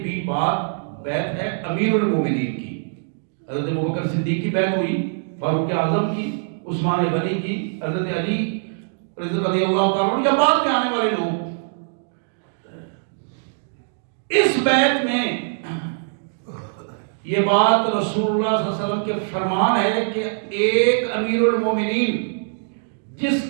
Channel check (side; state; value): left; silent; digital silence